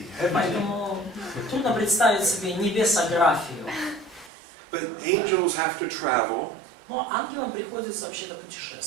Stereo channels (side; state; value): left; drops out; at 4.3 s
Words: Поэтому трудно представить себе небесографию. But angels have to travel. Но ангелам приходится вообще-то They